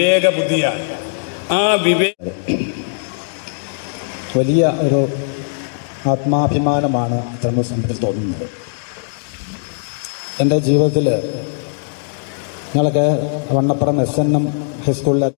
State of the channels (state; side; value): silent; right; digital silence